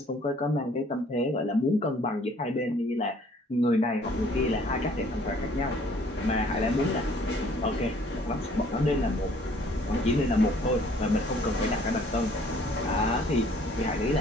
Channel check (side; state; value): both; normal; correlation 0.58